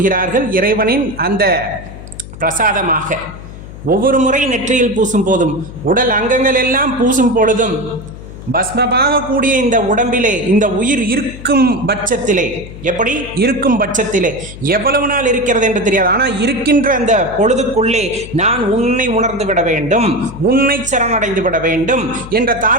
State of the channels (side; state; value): left; noise; hum, 14 dB below the sound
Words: இறைவனின் அந்த பிரசாதமாக ஒவ்வொரு முறை நெற்றியில் பூசும் போதும், உடல் அங்கங்கள் எல்லாம் பூசும் பொழுதும், பஸ்மமாக கூடிய இந்த உடம்பிலே இந்த உயிர் இருக்கும் பட்சத்திலே, எப்படி இருக்கும் பட்சத்திலே எவ்வளவு நாள் இருக்கிறது என்று தெரியாது, ஆனால் இருக்கின்ற அந்த பொழுதுக்குள்ளே நான் உன்னை உணர்ந்து விட வேண்டும், உன்னை சரணடைந்து விட வேண்டும் என்ற